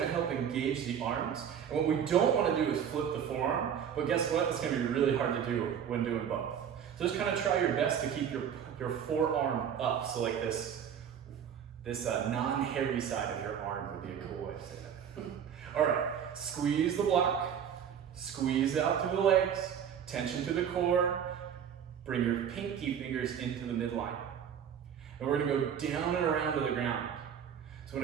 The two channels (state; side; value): quieter; left; 8.4 dB